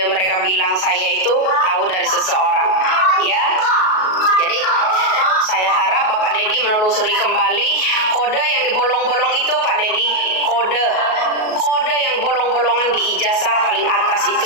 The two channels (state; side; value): late; right; 38 ms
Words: mereka bilang saya itu tahu dari seseorang. Ya, jadi saya harap Bapak Dedi menelusuri kembali kode yang dibolong-bolong itu Pak Dedi, kode yang bolong-bolongan di ijazah paling atas